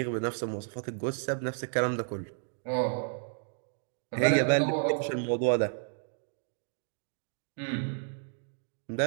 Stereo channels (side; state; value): left; silent; digital silence